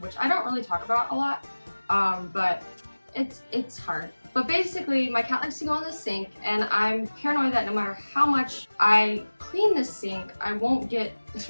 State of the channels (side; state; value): both; inverted; correlation -1.00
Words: I don't really talk about a lot, but it's hard. But basically, my cat likes to go in the sink, and I'm paranoid that no matter how much I clean the sink, I won't get